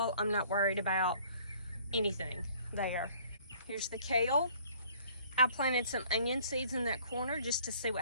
I'm not worried about anything there. Here's the kale. I planted some onion seeds in that corner just to see what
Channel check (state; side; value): inverted; both; correlation -0.56